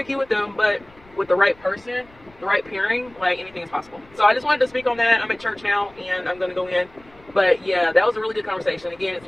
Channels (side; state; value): left; noise; rumble, 27 dB below the sound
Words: with them, but with the right person, the right pairing, like, anything is possible. So I just wanted to speak on that. I'm at church now and I'm going to go in. But yeah, that was a really good conversation. Again,